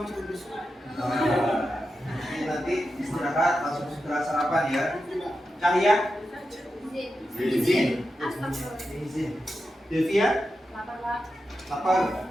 terus. Nanti istirahat langsung segera sarapan ya. Cahya. Izin. Izin. Devia. Lapar.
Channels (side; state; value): both; normal; correlation 0.89